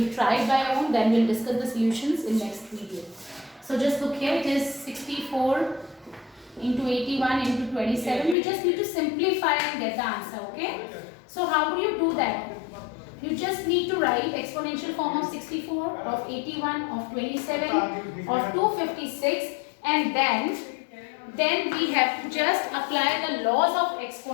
try it by your own. Then we'll discuss the solutions in next video. So just look here. It is 64 into 81 into 27. We just need to simplify and get the answer. Okay. So how do you do that? You just need to write exponential form of 64, of 81, of 27, of 256, and then we have to just apply the laws of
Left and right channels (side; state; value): right; drops out; at 8.3 s